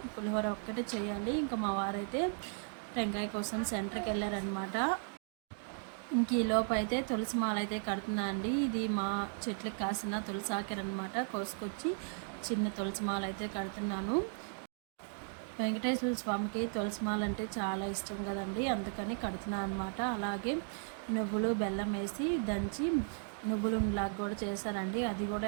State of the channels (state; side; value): silent; left; 54 dB below the other